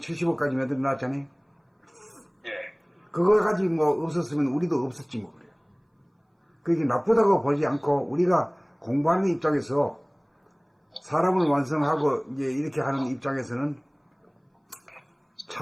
만들어 놨잖아요. 예. 그거 가지고 뭐 없었으면 우리도 없었지 뭐 그래요. 그게 나쁘다고 보지 않고 우리가 공부하는 입장에서 사람을 완성하고 이제 이렇게 하는 입장에서는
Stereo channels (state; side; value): identical; both; correlation 1.00